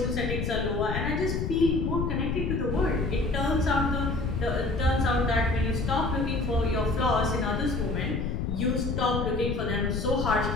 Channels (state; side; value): noise; left; rumble, 1 dB below the sound